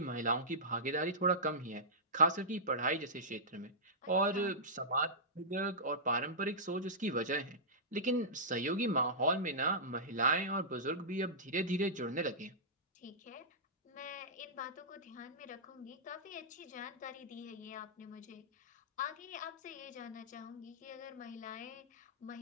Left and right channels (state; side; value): normal; both; correlation -0.16